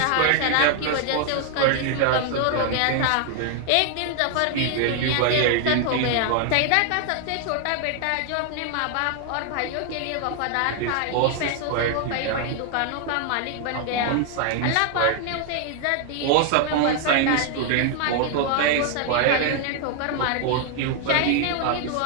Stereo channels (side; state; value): both; different; correlation 0.00